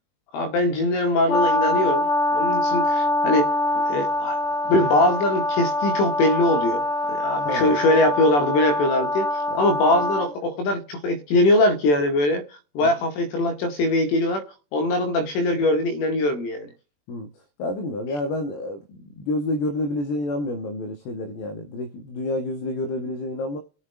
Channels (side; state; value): right; late; 21 ms